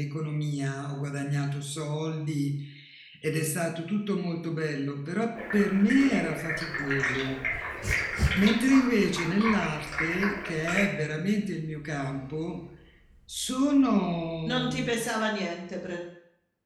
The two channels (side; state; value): both; identical; correlation 1.00